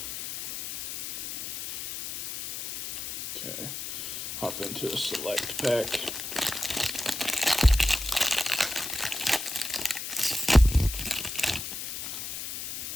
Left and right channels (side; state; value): left; noise; hiss, 7 dB below the sound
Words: Okay, hop into a select pack.